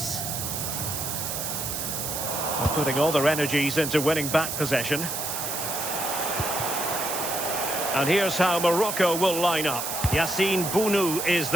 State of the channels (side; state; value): right; noise; hiss, 3 dB below the sound